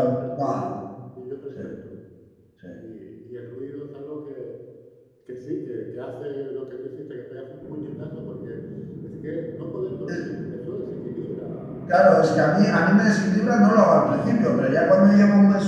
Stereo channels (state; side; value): identical; both; correlation 1.00